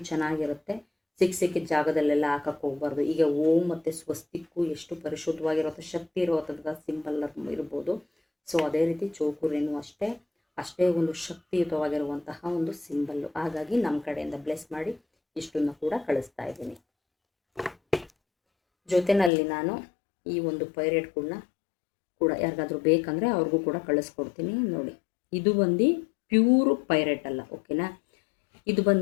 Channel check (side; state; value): right; drops out; at 19.3 s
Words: ಚೆನ್ನಾಗಿರುತ್ತೆ. ಸಿಕ್ಕಿದ ಜಾಗದಲ್ಲೆಲ್ಲ ಹಾಕಕ್ಕೆ ಹೋಗ್ಬಾರ್ದು. ಈಗ ಓಂ ಮತ್ತು ಸ್ವಸ್ತಿಕ್ಕು ಎಷ್ಟು ಪರಿಶುದ್ಧವಾಗಿರುತ್ತೋ, ಶಕ್ತಿ ಇರುವಂಥ ಸಿಂಬಲ್ ಇರ್ಬೋದು. ಸೊ ಅದೇ ರೀತಿ ಚೋಕುರೇನು ಅಷ್ಟೇ ಒಂದು ಶಕ್ತಿಯುತವಾಗಿರುವಂತಹ ಒಂದು ಸಿಂಬಲ್ಲು. ಹಾಗಾಗಿ ನಮ್ಮ ಕಡೆಯಿಂದ ಬ್ಲೆಸ್ ಮಾಡಿ ಇಷ್ಟನ್ನು ಕೂಡ ಕಳಿಸ್ತಾ ಇದ್ದೀನಿ. ಜೊತೆಯಲ್ಲಿ ನಾನು ಈ ಒಂದು ಪೈರೇಟ್ಗಳನ್ನ ಕೂಡ ಯಾರಿಗಾದ್ರೂ ಬೇಕಂದರೆ ಅವ್ರಿಗೂ ಕೂಡ ಕಳಿಸ್ಕೊಡ್ತೀನಿ. ನೋಡಿ, ಇದು ಬಂದು ಪ್ಯೂರು ಪೈರೇಟ್ ಅಲ್ಲ, ಓಕೆನಾ. ಇದು